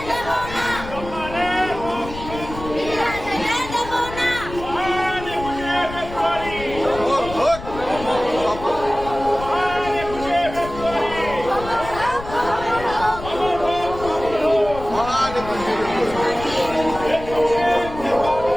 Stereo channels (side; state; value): left; noise; rumble, 12 dB below the sound